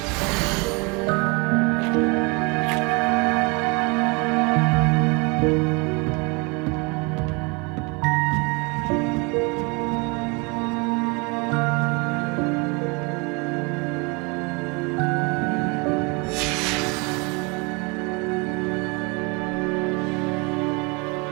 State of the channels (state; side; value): quieter; left; 29.7 dB